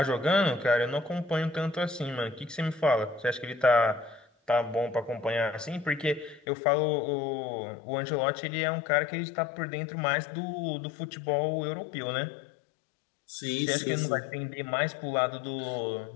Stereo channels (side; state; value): right; drops out; at 6.4 s